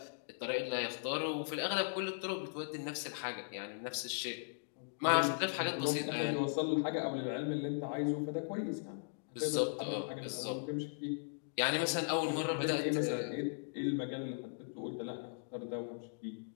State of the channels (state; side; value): silent; right; digital silence